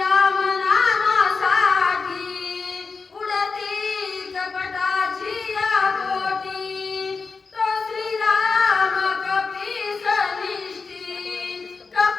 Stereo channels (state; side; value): quieter; right; 4.6 dB